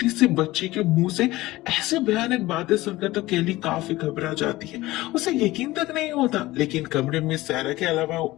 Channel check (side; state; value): right; quieter; 18.3 dB